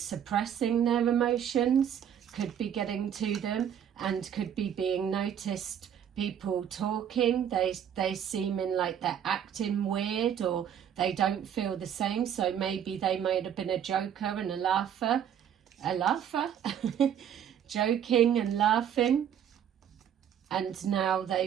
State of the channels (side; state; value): left; quieter; 9.2 dB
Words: their emotions could be getting to them and could be being noticed. People talking, they seeming like they're acting weird or they don't feel the same. So maybe they might have been a joker and a laugher, joking and laughing, and now